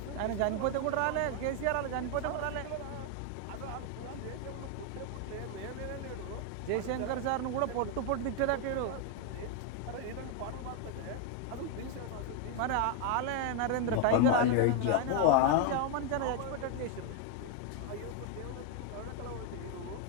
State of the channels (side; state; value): both; different; correlation 0.01